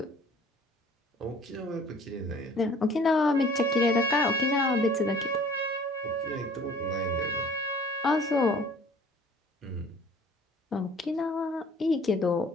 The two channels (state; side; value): normal; both; correlation 0.52